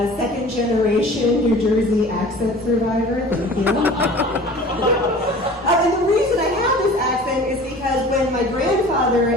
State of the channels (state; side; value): normal; both; correlation 0.43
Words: a second generation New Jersey accent survivor. Thank you. And the reason I have this accent is because when my grandfather